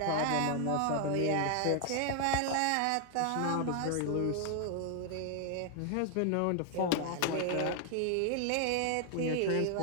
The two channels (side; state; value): both; different; correlation 0.00